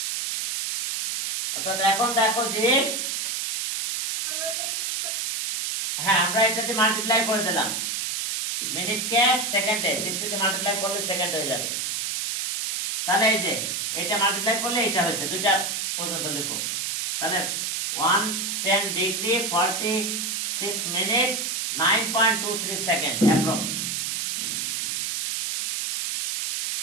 অর্থাৎ এখন দেখো যে হ্যাঁ আমরা এটাতে মাল্টিপ্লাই করে দিলাম, মিনিটকে সেকেন্ডে 60 দিয়ে মাল্টিপ্লাই করলে সেকেন্ড হয়ে যাবে। তাহলে এই যে এটা মাল্টিপ্লাই করলে এটা হয়েছে, দুইটা পর্যন্ত লিখো। তাহলে 110 degree 46 minute 9.23 second approx.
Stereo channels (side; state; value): right; noise; hiss, 1 dB below the sound